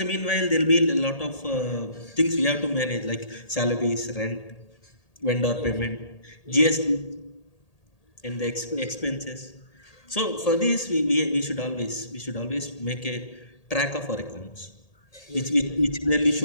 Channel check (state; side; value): late; right; 1.8 ms